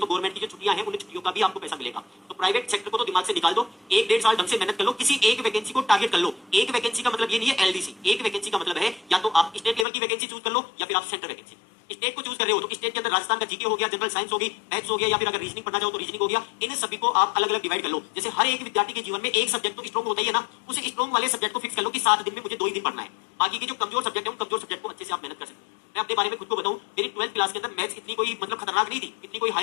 गवर्नमेंट की जो छुट्टियां हैं उन छुट्टियों का भी आपको पैसा मिलेगा। तो प्राइवेट सेक्टर को तो दिमाग से निकाल दो, 1-1.5 साल ढंग से मेहनत कर लो, किसी एक वैकेंसी को टारगेट कर लो। एक वैकेंसी का मतलब ये नहीं है एलडीसी, एक वैकेंसी का मतलब है या तो आप स्टेट लेवल की वैकेंसी चूज कर लो या फिर आप सेंट्रल वैकेंसी। स्टेट को चूज कर रहे हो तो स्टेट के अंदर राजस्थान का जीके हो गया, जनरल साइंस होगी, मैथ्स हो गया, या फिर अगर रीजनिंग पढ़ना चाहो तो रीजनिंग हो गया। इन सभी को आप अलग अलग डिवाइड कर लो। जैसे हर एक विद्यार्थी के जीवन में एक सब्जेक्ट तो स्ट्रॉन्ग होता ही है ना, उस स्ट्रॉन्ग वाले सब्जेक्ट को फिक्स कर लो कि 7 दिन में मुझे 2 ही दिन पढ़ना है। बाकी के जो कमजोर सब्जेक्ट है उन कमजोर सब्जेक्ट को अच्छे से आप मेहनत कर सकते हो। मैं अपने बारे में खुद को बताऊं, मेरी 12th क्लास के अंदर मैथ्स इतनी कोई मतलब खतरनाक नहीं थी, इतनी कोई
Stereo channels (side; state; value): right; drops out; at 9.9 s